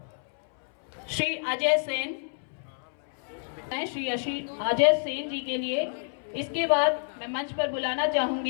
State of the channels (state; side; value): silent; right; 59 dB below the other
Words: श्री अजय सेन, श्री अजय सेन जी के लिए। इसके बाद मैं मंच पर बुलाना